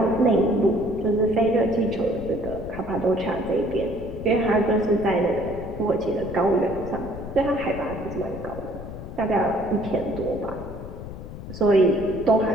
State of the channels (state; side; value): noise; left; rumble, 11 dB below the sound